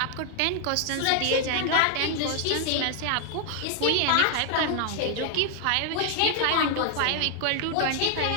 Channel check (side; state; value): both; different; correlation 0.00